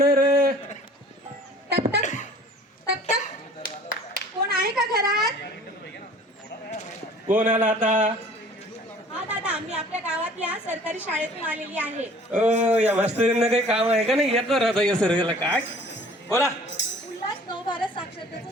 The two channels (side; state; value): both; normal; correlation 0.50